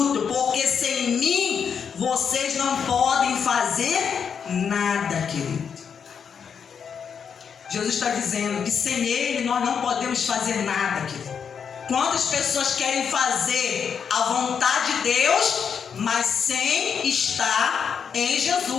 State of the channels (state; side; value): quieter; right; 6.9 dB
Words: porque sem mim vocês não podem fazer nada, querido. Jesus está dizendo que sem ele nós não podemos fazer nada, querido. Quantas pessoas querem fazer a vontade de Deus, mas sem estar em